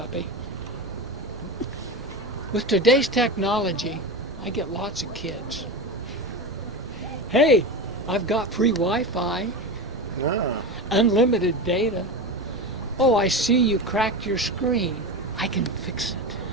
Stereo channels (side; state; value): both; normal; correlation 0.22